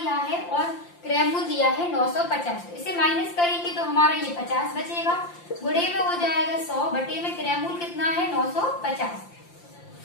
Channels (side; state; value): right; late; 5.8 ms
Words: है और क्रय मूल्य दिया है 950, तो इसे माइनस करेंगे तो हमारा ये 50 बचेगा, गुणे में हो जाएगा 100 बटे में क्रय मूल्य कितना है, 950।